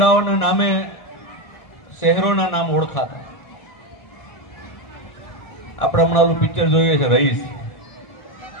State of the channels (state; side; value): late; right; 1.7 ms